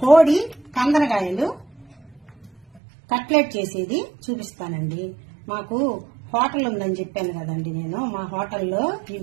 కోడి కందనకాయలు కట్లెట్ చేసేది చూపిస్తానండి. మాకు హోటల్ ఉందని చెప్పాను కదండి. మా హోటల్లో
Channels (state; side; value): drops out; left; at 2.8 s